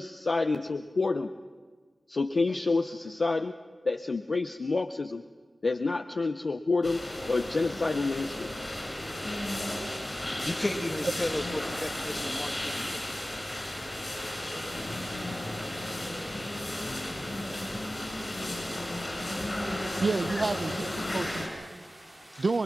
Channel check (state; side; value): normal; both; correlation 0.95